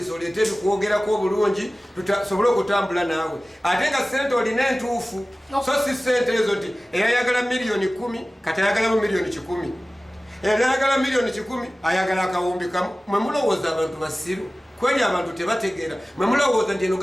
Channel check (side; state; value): both; normal; correlation 0.97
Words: oleete ebikwogerako obulungi tusobole okutambula naawe ate nga sente olina entuufu so si sente ezo nti eyayagala miliyoni 10 kati ayagalamu miliyoni 100 eyayagala miliyoni 10 ayagala akawumbi kamu mwe mulowooza abantu basiru kweli abantu tebategeera mwe mulowooza nti eno